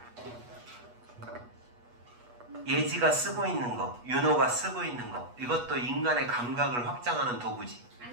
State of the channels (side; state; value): left; late; 8.2 ms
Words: 예지가 쓰고 있는 거, 윤호가 쓰고 있는 거. 이것도 인간의 감각을 확장하는 도구지.